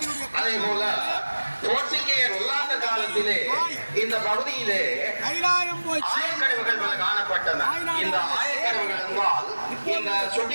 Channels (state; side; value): inverted; both; correlation -1.00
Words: அதே போல போர்ச்சுகேயர் ஒல்லாந்த காலத்திலே இந்த பகுதியிலே ஆயக்கடவுகள் பல காணப்பட்டன. இந்த ஆயக்கடவுகள் என்றால் இந்த